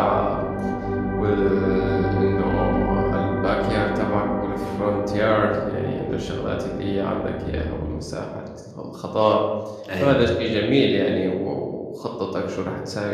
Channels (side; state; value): both; identical; correlation 1.00